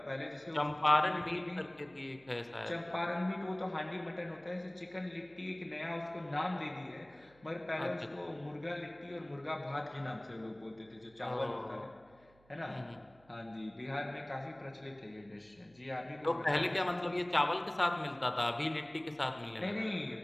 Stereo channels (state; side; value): noise; right; hum, 29 dB below the sound